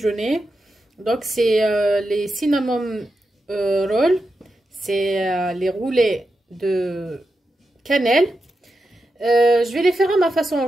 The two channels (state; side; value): normal; both; correlation 0.88